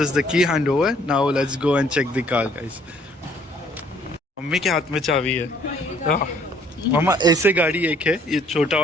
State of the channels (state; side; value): normal; both; correlation 0.62